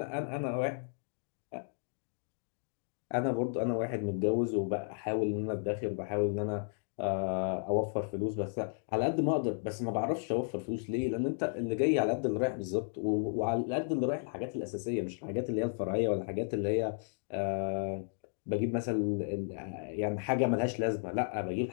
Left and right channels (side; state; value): right; silent; digital silence